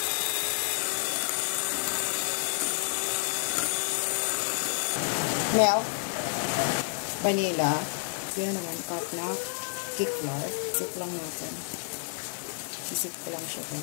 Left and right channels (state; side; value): silent; right; digital silence